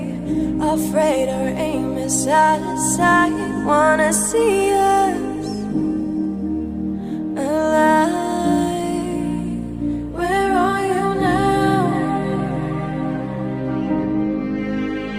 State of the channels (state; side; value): identical; both; correlation 1.00